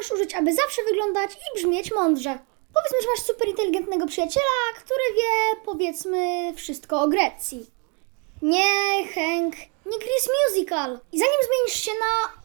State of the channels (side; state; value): left; quieter; 35.5 dB